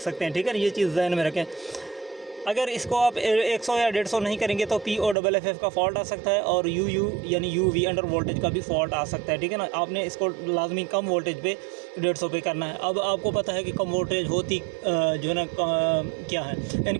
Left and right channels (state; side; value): drops out; left; at 5.2 s